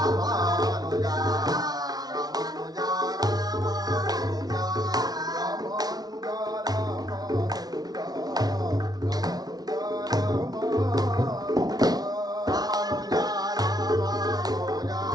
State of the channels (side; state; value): left; late; 0.19 ms